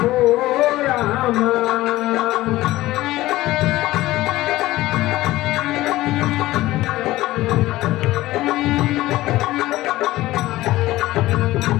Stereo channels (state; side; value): quieter; right; 16.9 dB